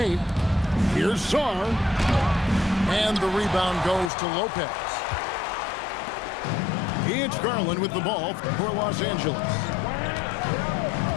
Here's Sarr. And the rebound goes to Lopez. It's Garland with the ball for Los Angeles.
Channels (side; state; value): right; drops out; at 4.1 s